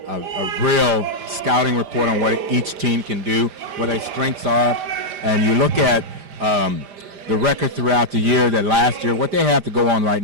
real scouting report on what each team can do, what their strengths are, and you look at the record throughout the year, that last year, what they have to go on right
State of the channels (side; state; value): left; late; 5.0 ms